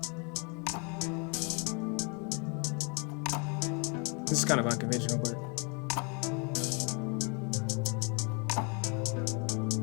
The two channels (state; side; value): quieter; right; 33.8 dB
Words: This is kind of unconventional, but